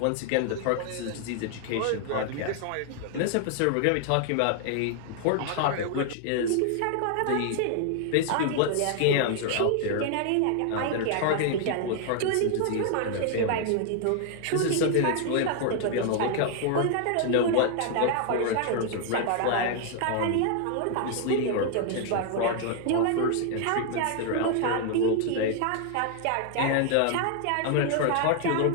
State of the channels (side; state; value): both; different; correlation 0.00